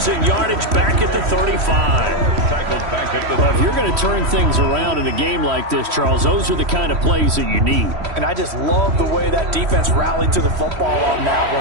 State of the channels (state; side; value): late; left; 3.1 ms